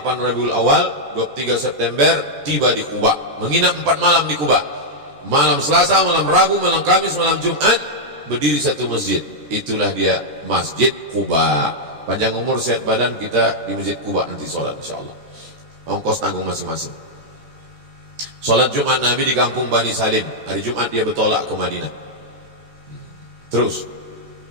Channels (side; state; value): left; late; 13 ms